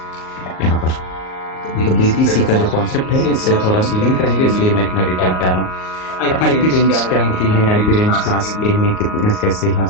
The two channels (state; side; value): late; right; 38 ms